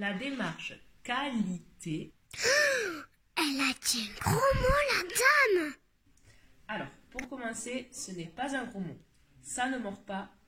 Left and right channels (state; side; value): identical; both; correlation 1.00